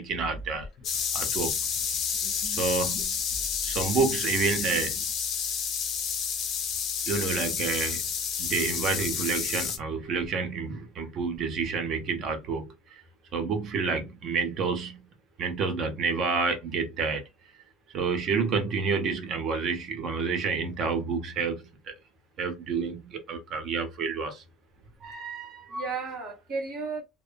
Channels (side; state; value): both; normal; correlation 0.42